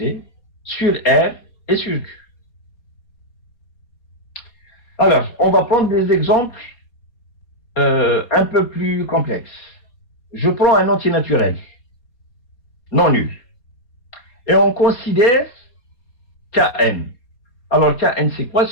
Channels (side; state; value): right; late; 4.2 ms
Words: sur R et sur Q. Alors, on va prendre des exemples un peu plus complexes. Je prends un entier naturel, non nul. Et on considère Kn. Alors, Kn, c'est quoi?